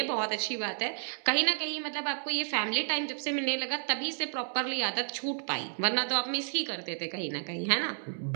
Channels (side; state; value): left; silent; digital silence